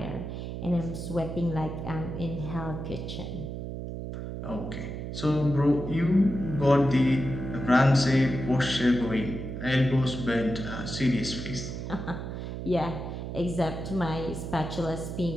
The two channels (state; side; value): noise; right; hum, 6 dB below the sound